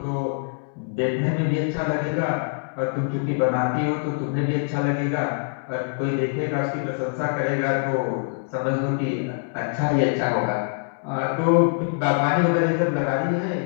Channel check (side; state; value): right; silent; 62 dB below the other